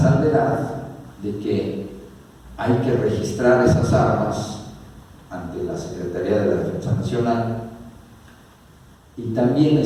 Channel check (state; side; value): identical; both; correlation 1.00